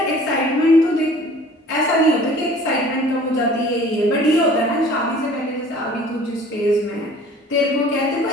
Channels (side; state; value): both; normal; correlation 0.49